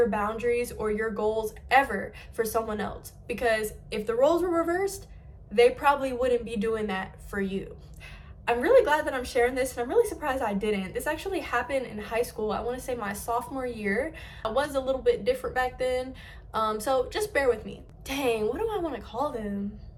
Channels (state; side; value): identical; both; correlation 1.00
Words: boundaries or your goals ever for someone else, because if the roles were reversed, they probably wouldn't be doing that for you. I'm really glad that I'm sharing this, and I'm really surprised I didn't. This actually happened in high school. I want to say my sophomore year. I was a little bit different back then, so just bear with me. Dang, what do I want to call them?